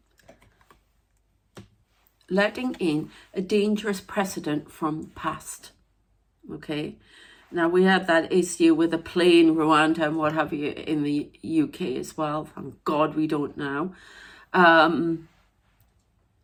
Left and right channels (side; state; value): both; identical; correlation 1.00